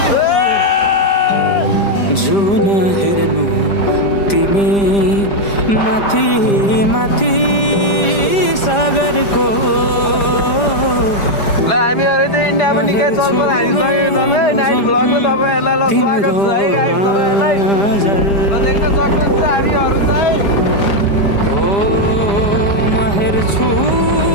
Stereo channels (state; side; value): late; right; 5.0 ms